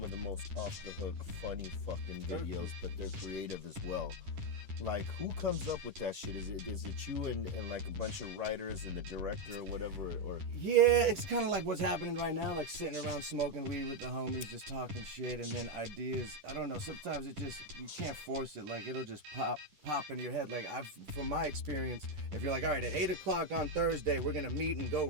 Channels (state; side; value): late; left; 10 ms